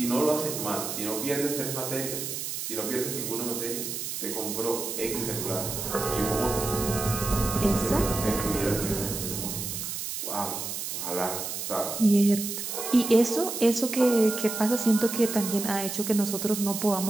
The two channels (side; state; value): right; noise; hiss, 5 dB below the sound